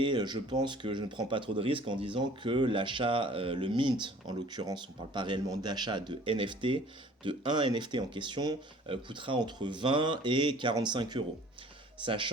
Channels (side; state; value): both; normal; correlation 0.51